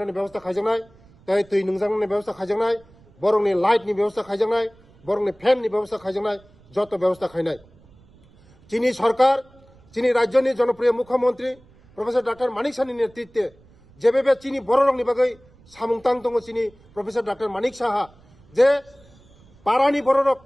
ব্যবস্থা খাইজানাই তাই তুই নংজাংনি ব্যবস্থা খাইজানাই বরংনি লাইটনি ব্যবস্থা খাইজানাই বরংনি ফ্যাননি ব্যবস্থা খাইজানাই যত ব্যবস্থা খাইনাই চিনি সরকার চিনি রাজ্যনি জনপ্রিয় মুখ্যমন্ত্রী প্রফেসর ডক্টর মানিক সাহানি নেতৃত্বে যেভাবে চিনি বড় রংনি বাগৈ সামুংতাং দङ চিনি প্রফেসর ডক্টর মানিক সাহা যে পারানি বড়রক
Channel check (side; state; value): right; noise; rumble, 28 dB below the sound